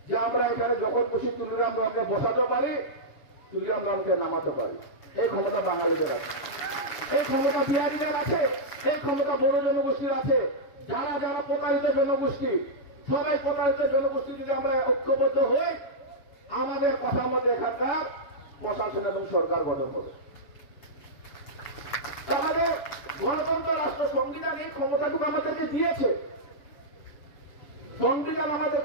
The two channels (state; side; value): late; right; 7.0 ms